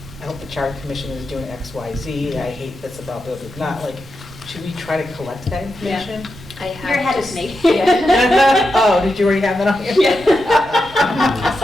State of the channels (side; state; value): right; noise; rumble, 19 dB below the sound